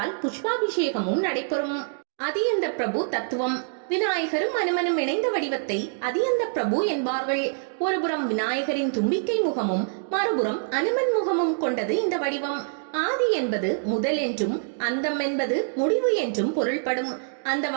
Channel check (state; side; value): silent; left; digital silence